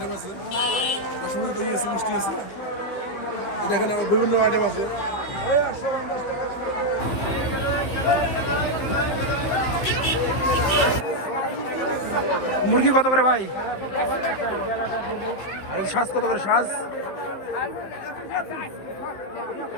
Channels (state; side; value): late; right; 15 ms